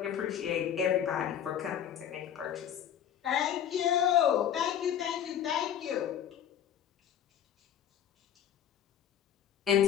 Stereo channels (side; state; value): right; quieter; 9.6 dB